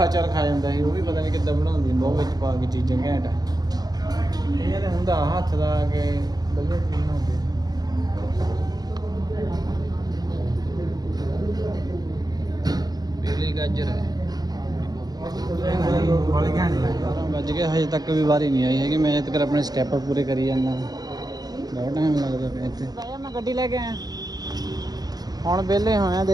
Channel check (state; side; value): late; left; 0.19 ms